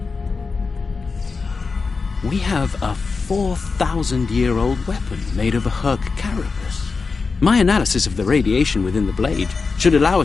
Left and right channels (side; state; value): right; quieter; 4.5 dB